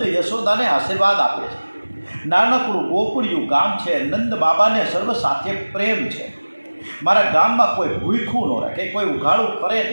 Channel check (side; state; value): both; inverted; correlation -1.00